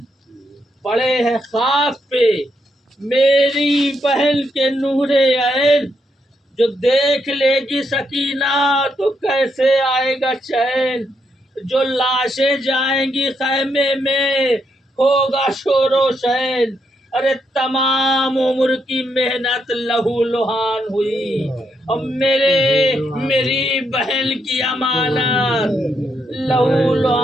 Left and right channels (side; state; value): both; normal; correlation 0.79